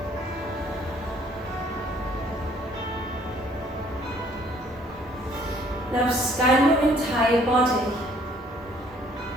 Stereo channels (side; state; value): both; normal; correlation 0.61